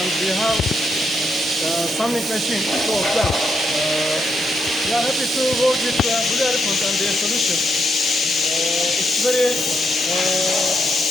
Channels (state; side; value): normal; both; correlation 0.79